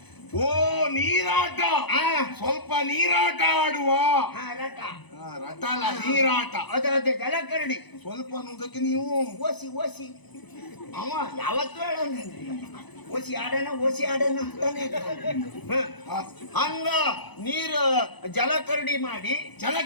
ಓ, ನೀರಾಟ. ಸ್ವಲ್ಪ ನೀರಾಟ ಆಡುವ. ರಟ ರಟ ಅಲ್ಲ, ನೀರಾಟ. ಅದೇ ಜಲಕರಡಿ. ಸ್ವಲ್ಪ ಅನ್ನೋದಕ್ಕೆ ನೀವು ಓಸಿ ಅವ ಯಾವತ್ತೂ ಹೇಳೋಣ ಓಸಿ ಆಡೋಣ ಅಂತಾನೆ. ಹಂಗ ನೀರು ಜಲಕರಡಿ ಮಾಡಿ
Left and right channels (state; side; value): late; right; 0.99 ms